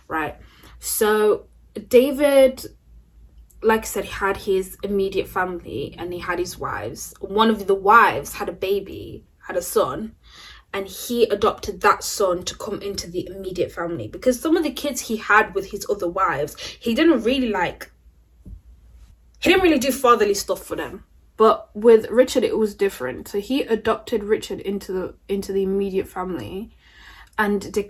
right? So David, like I said, he had his immediate family and he had his wives. One of the wives had a son, and he adopted that son to come into the immediate family, because some of the kids he had with his other wives, he didn't really do fatherly stuff for them. But with Richard, it was different. So he adopted Richard into the immediate family and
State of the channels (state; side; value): identical; both; correlation 1.00